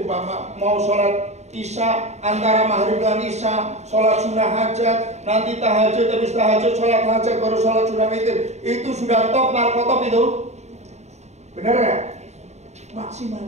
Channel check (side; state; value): left; late; 0.32 ms